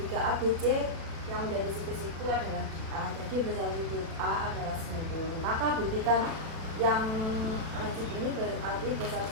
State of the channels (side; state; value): left; late; 37 ms